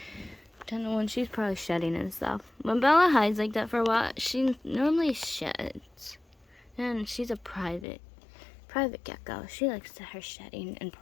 Don't know when she's probably shedding and stuff. When Bella hides like that for a while, she normally sheds. And she's a private gecko. She likes her shedding in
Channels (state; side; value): drops out; right; at 7.9 s